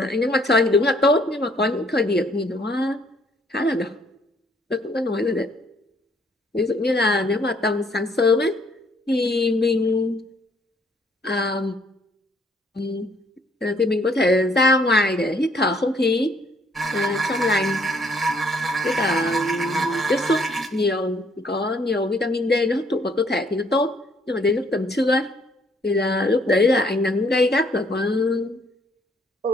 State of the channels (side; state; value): both; normal; correlation 0.65